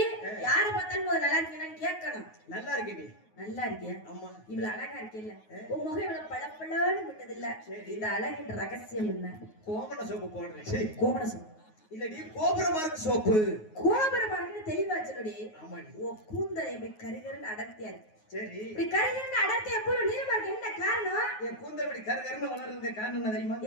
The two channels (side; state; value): right; late; 9.4 ms